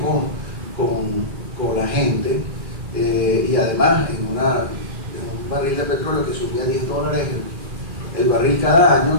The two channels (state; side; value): late; left; 2.4 ms